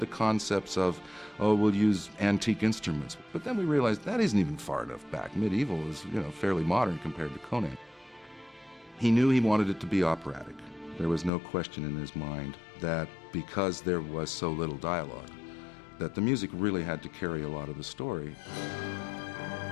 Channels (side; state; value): right; drops out; at 11.3 s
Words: concepts of, we'll use antique instruments. But then we realized that isn't even far enough back. Medieval is, fairly modern compared to Conan. He knew he wanted it to be operatic. There was no question in his mind that because there was so little dialogue, that the music really had to carry a lot of the story.